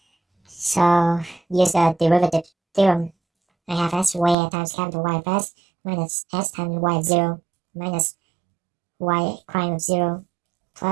So use the derivative theorem. I have s squared times capital Y of s minus s times y of 0 minus y prime of 0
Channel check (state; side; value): drops out; left; at 4.4 s